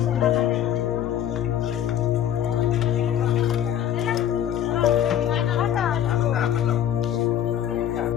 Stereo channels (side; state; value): right; quieter; 10.5 dB